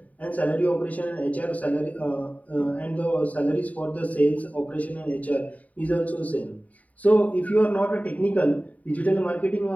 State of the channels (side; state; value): right; late; 0.071 ms